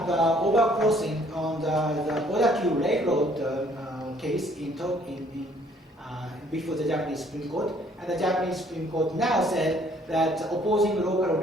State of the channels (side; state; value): both; normal; correlation 0.62